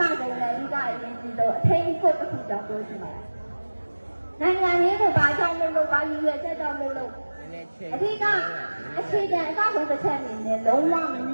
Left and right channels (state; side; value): inverted; both; correlation -1.00